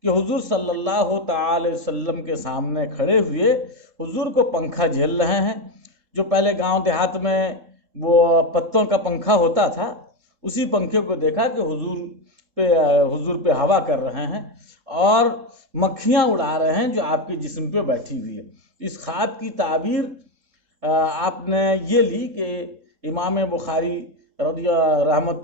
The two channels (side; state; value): left; late; 3.7 ms